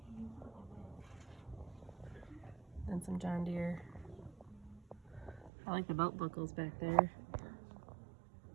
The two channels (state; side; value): drops out; left; at 5.5 s